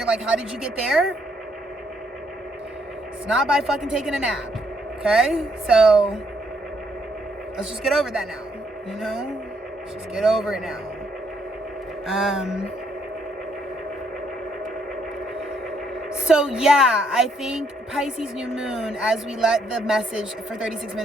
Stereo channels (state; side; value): normal; both; correlation 0.72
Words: like, how did you get there? It's not by fucking taking a nap. Okay? So, let's just get over that now. You know? Let's just get over it now. So yeah, I think Pisces New Moon, as we let the message for 36